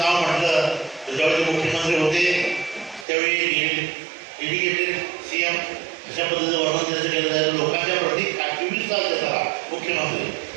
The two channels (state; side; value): drops out; left; at 3.1 s